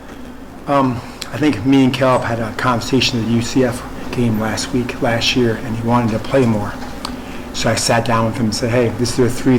I think me and Caleb had a conversation at the UCF game last year, and he wanted to play more. So I sat down with him and said, hey, this are the 3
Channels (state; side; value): identical; both; correlation 1.00